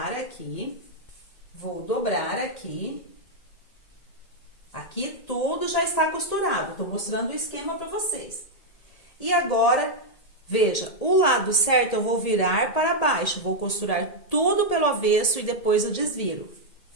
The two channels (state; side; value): late; right; 1.8 ms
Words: aqui. Vou dobrar aqui. Aqui tudo já está costurado. Tô mostrando o esquema para vocês. E agora, veja, o lado certo eu vou virar para baixo. Vou costurar tudo pelo avesso e depois eu desviro.